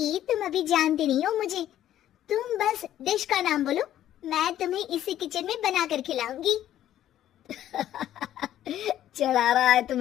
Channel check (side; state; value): right; quieter; 12.0 dB